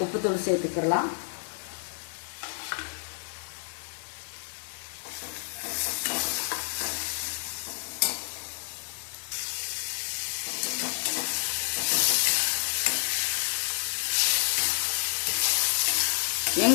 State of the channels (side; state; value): right; silent; digital silence